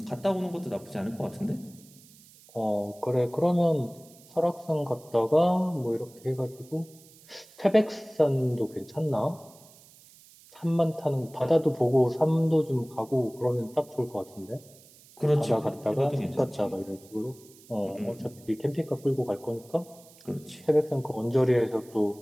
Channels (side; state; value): right; noise; hiss, 24 dB below the sound